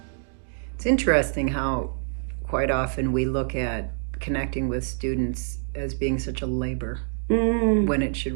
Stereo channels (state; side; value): silent; left; 61 dB below the other